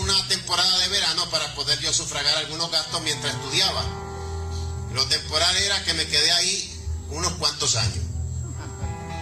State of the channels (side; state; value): both; identical; correlation 1.00